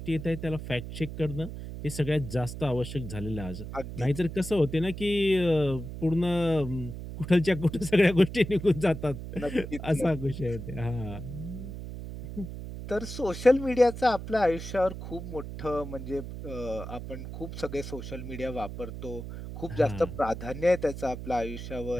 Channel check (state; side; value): noise; right; hum, 9 dB below the sound